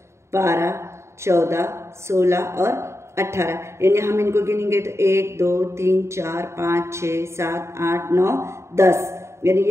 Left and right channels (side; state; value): left; late; 0.13 ms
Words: 12, 14, 16 और 18। यानी हम इनको गिनेंगे तो 1, 2, 3, 4, 5, 6, 7, 8, 9, 10, यानी